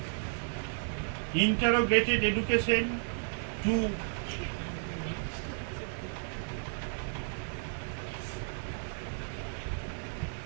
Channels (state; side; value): silent; left; 56 dB below the other